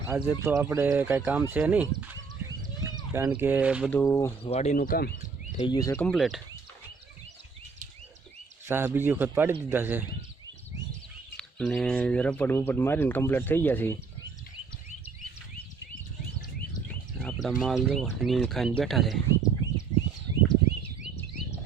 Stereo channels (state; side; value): quieter; left; 5.2 dB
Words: આજે તો આપણે કાંઈ કામ છે નહીં, કારણ કે બધું વાડીનું કામ થઈ ગયું છે કમ્પ્લીટ। સાહ બીજી વખત પાડી દીધા છે અને રપડ બપડ મારીને કમ્પ્લીટ થઈ ગયા છે। આપણા માલ જો નીણ ખાઈને બેઠા છે।